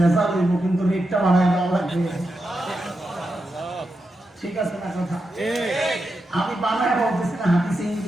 হইব, কিন্তু রেটটা বাড়ায় দেওয়া লাগবে। ঠিক আছে না কথা? আমি বানায় বলতেছি না, হাদিসে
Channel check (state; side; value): normal; both; correlation 0.87